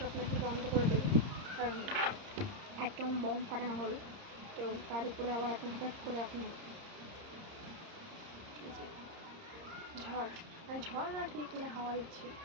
নাকি বন্ধ করে দেবে, কারণ একদম বম ফাটানো হলো। তো তার উপরে আবার এখন হঠাৎ করে এখন ঝড়, ঝড় না ঠিক মানে হাওয়া দিচ্ছে,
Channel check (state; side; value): late; left; 30 ms